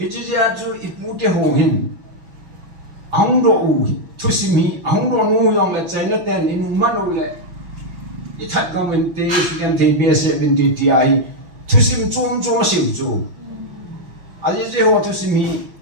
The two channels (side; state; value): left; late; 6.0 ms